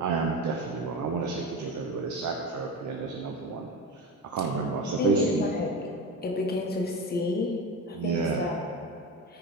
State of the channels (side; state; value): both; normal; correlation 0.25